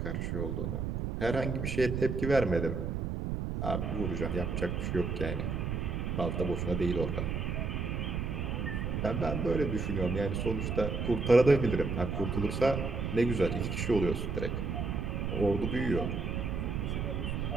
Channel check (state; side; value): noise; right; rumble, 1 dB below the sound